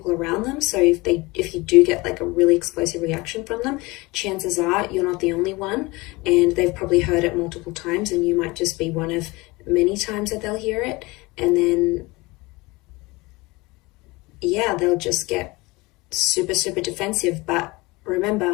around them. So if you do get like a really explosive reaction from them, chances are you're not the only one, and they've probably heard it multiple times, and you might just be one of many times that they'll hear it. And then, yeah, they'll just get super, super defensive. But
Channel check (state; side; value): quieter; right; 23.2 dB